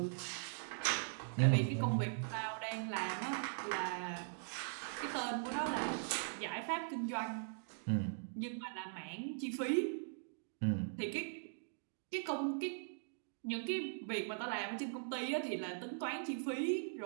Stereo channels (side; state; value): left; silent; digital silence